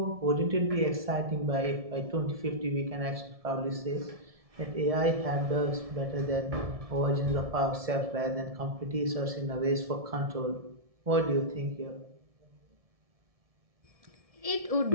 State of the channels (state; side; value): late; left; 1.7 ms